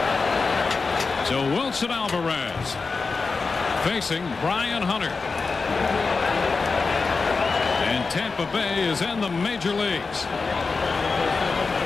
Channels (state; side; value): quieter; right; 4.4 dB